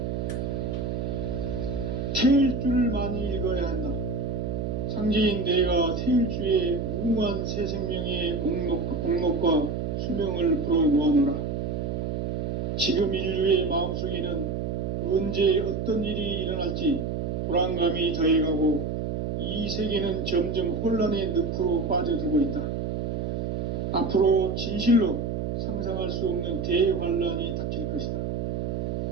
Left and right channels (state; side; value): noise; right; hum, 2 dB below the sound